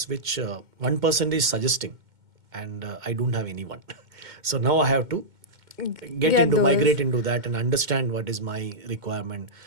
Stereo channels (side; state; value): left; late; 2.1 ms